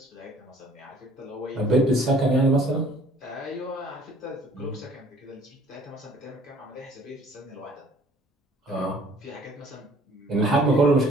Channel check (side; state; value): both; normal; correlation 0.56